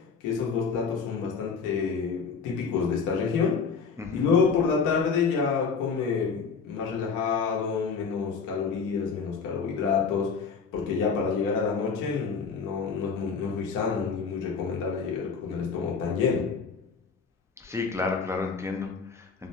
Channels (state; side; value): quieter; right; 5.5 dB